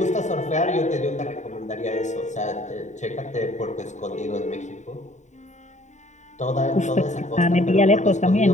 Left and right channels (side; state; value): right; late; 0.34 ms